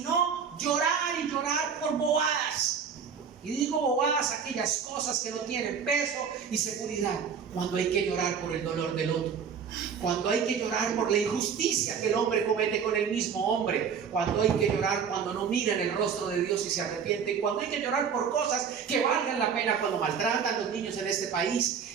llorar y llorar por bobadas. Y digo bobadas, aquellas cosas que no tienen peso y seguridad, cuando hay que llorar por el dolor del otro. Cuando hay que llorar por la injusticia que el hombre comete con el mismo hombre, cuando hay que llorar cuando no miran el rostro de Dios y se arrepienten, cuando hay que llorar por cosas que valgan la pena, cuando maltratan a los niños en este país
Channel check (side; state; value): left; quieter; 6.8 dB